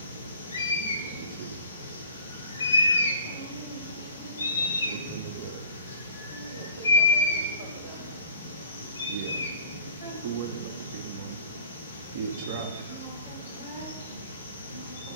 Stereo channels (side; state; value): both; inverted; correlation -0.48